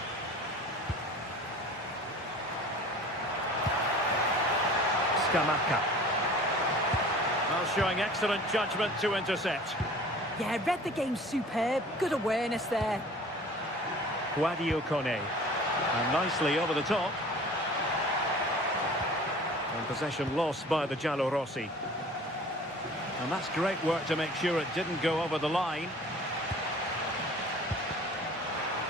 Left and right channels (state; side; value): normal; both; correlation 0.45